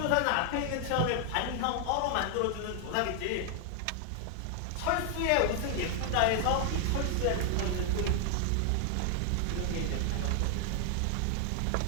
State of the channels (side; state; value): both; different; correlation 0.00